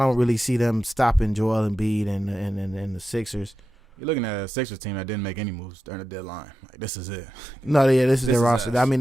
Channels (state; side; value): normal; both; correlation 0.90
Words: really see them stopping Joel Embiid and the Sixers. You're looking at a Sixers team that didn't make any moves during the deadline. Like, this is it. No, yeah, this is their roster. I mean,